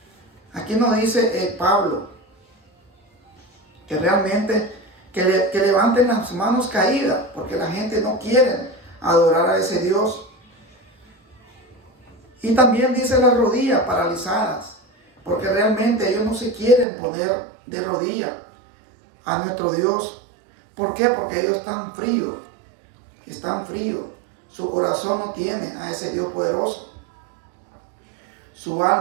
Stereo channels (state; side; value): drops out; left; at 16.9 s